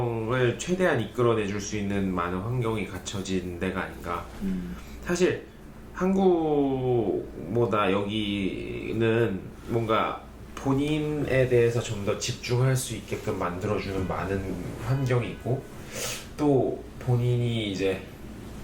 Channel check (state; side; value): identical; both; correlation 1.00